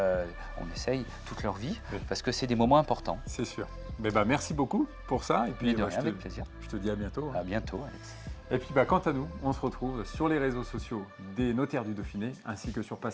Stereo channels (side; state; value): both; identical; correlation 1.00